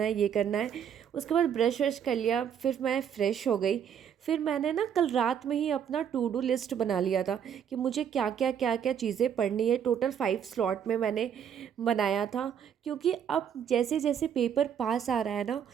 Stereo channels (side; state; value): left; quieter; 8.4 dB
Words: है, ये करना है। उसके बाद ब्रश व्रश कर लिया, फिर मैं फ़्रेश हो गई। फिर मैंने ना कल रात में ही अपना टू डू लिस्ट बना लिया था कि मुझे क्या क्या चीज़ें पढ़नी है। टोटल 5 स्लॉट में मैंने बनाया था, क्योंकि अब जैसे जैसे पेपर पास आ रहा है ना,